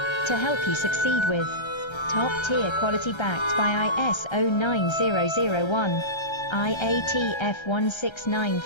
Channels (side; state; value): right; late; 1.3 ms